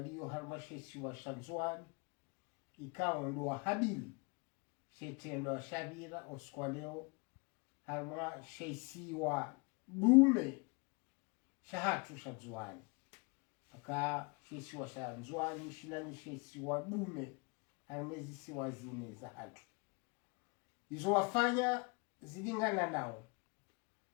halmasheshi wa shanzuani ikawa ndo habili shetendo wa shavira oskwaleo halma sheisi wa dume shahatu shanzuani aka sheisi wa shanzuani shilani sheisi wa dume halmezi siwa zine za hatu izo wafanya zilingana nao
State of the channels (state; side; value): quieter; right; 30.8 dB